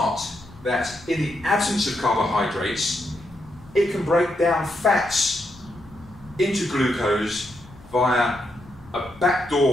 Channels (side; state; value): left; noise; rumble, 22 dB below the sound